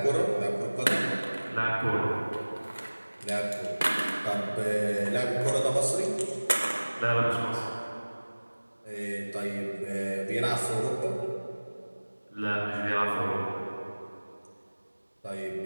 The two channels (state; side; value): inverted; both; correlation -1.00